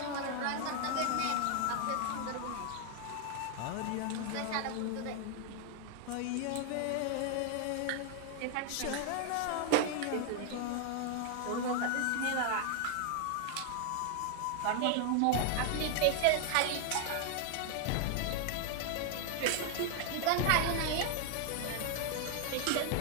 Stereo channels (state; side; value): different; both; correlation 0.00